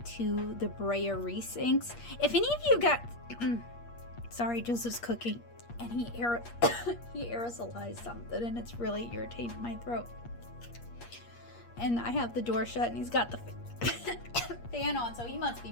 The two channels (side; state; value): right; late; 8.5 ms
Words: to the Brea Reese inks. If any of you got, sorry, Joseph's cooking, and he aerosolized something, and it's really irritating my throat. And I have the door shut, and he's got the fan on, so he must